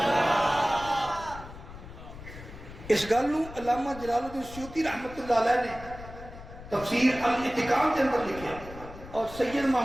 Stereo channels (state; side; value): noise; left; rumble, 15 dB below the sound